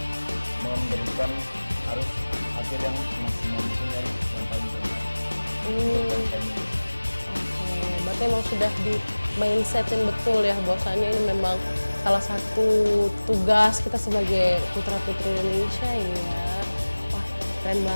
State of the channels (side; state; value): both; inverted; correlation -1.00